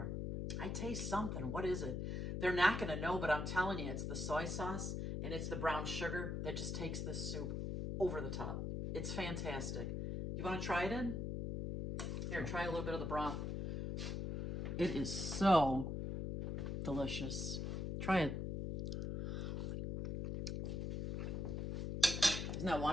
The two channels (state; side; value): noise; left; hum, 2 dB below the sound